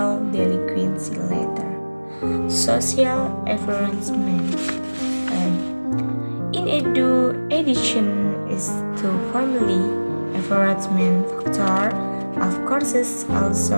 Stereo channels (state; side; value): inverted; both; correlation -1.00